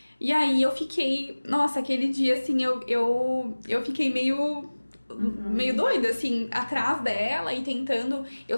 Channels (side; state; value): both; inverted; correlation -1.00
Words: E aí eu fiquei, nossa, aquele dia, assim, eu fiquei meio doida, assim, atrás dela e tentando. Eu